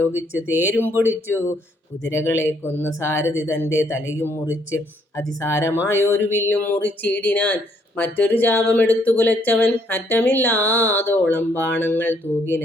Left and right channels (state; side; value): normal; both; correlation 0.69